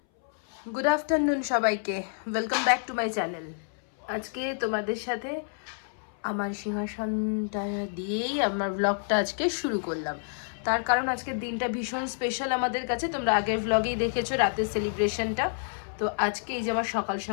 গুড আফটারনুন সবাইকে, welcome back to my channel. আজকে তোমাদের সাথে আমার সিংহাসনটা দিয়েই আমার ব্লগটা আজকে শুরু করলাম। তার কারণ আজকের দিনটা ভীষণ স্পেশাল আমাদের কাছে। তোমরা আগের ব্লগেই দেখেছো রাতের সেলিব্রেশনটা। তো আজকে এই যে আমার সকাল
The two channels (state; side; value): silent; right; 59 dB below the other